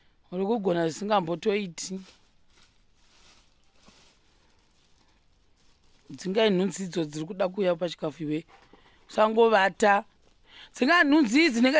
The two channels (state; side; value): identical; both; correlation 1.00